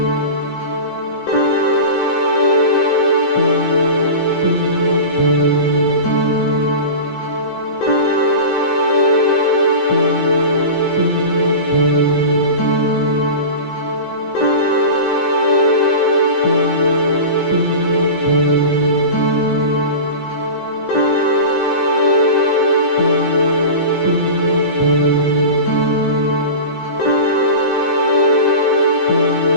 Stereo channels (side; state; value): right; late; 15 ms